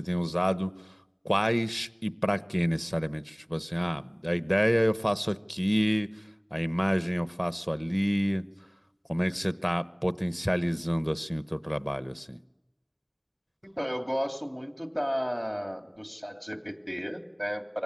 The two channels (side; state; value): both; identical; correlation 1.00